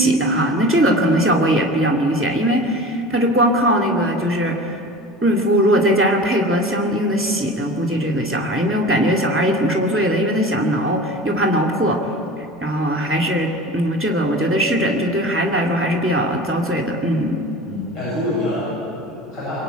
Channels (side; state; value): both; normal; correlation 0.36